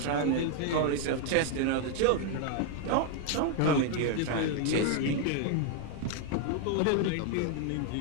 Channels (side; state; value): both; different; correlation 0.00